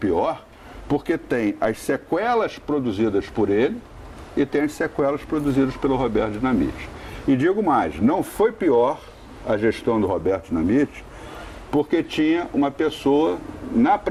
porque tem as sequelas produzidas por ele e tem as sequelas produzidas pelo Roberto Dinamite. E digo mais, não foi pior a gestão do Roberto Dinamite, porque tinha uma pessoa na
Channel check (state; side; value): identical; both; correlation 1.00